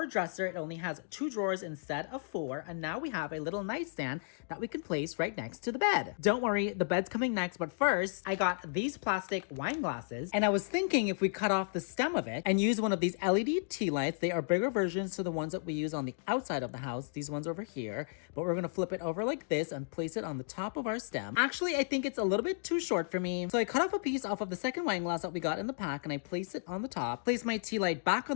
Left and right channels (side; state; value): right; silent; digital silence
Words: dresser. It only has 2 drawers instead of 4. And now we have a little nightstand that we can place right next to the bed. Don't worry, the bed's coming next. But first, I got these plastic wine glasses. And I was thinking if we cut off the stem of it and use one of these LED tea lights, they are bigger versions to the ones that we use on the outside of the house, these ones over here, but we're gonna flip it over like this and place it on the top of our stem. Actually, I think it's a little bit too short for me, so I cut off a piece off of the second wine glass that we got in the pack and I place it on the top, place my tea light back on